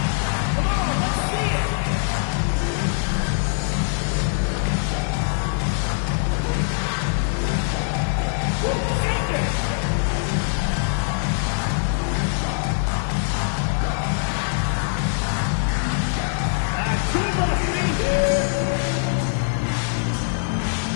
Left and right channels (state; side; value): silent; right; 64 dB below the other